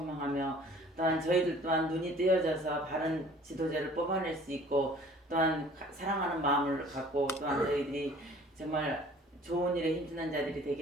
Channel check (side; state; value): both; normal; correlation 0.51